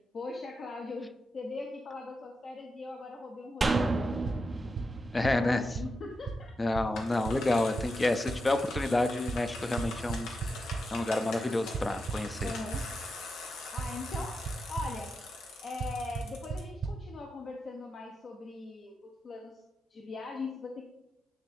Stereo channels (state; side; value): normal; both; correlation 0.87